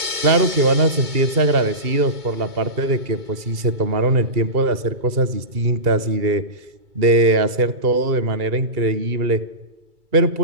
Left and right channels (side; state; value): left; late; 2.3 ms